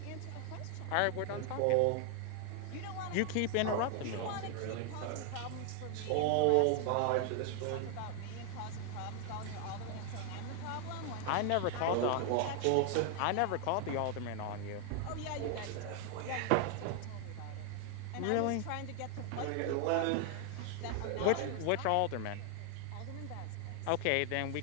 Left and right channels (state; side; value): different; both; correlation 0.00